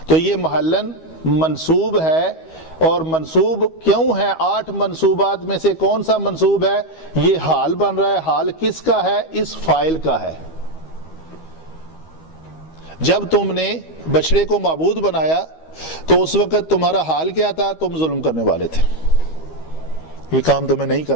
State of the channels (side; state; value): right; late; 13 ms